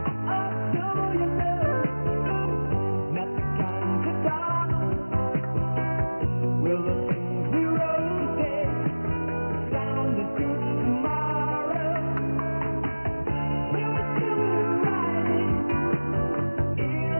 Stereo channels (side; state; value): both; inverted; correlation -1.00